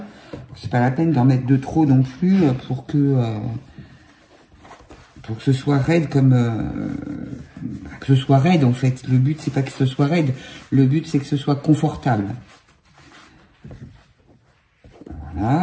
C'est pas la peine d'en mettre de trop non plus pour que ce soit raide comme... que ce soit raide en fait. Le but, c'est pas que ce soit raide. Le but, c'est que ce soit confortable.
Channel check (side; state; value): both; identical; correlation 1.00